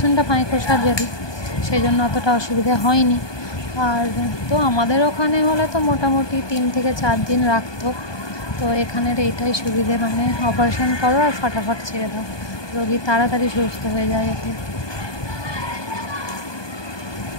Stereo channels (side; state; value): right; late; 1.2 ms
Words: মাইক্রো সার্জারি, সেই জন্য অতটা অসুবিধা হয়নি। আর তো আমাদের ওখানে হলে তো মোটামুটি 3 থেকে 4 দিন রাখতো। তো এখানের এইটাই সুবিধে, মানে অপারেশন করো আর ফটাফট ছেড়ে দাও, রোগী তাড়াতাড়ি সুস্থ হয়ে যায় এতে।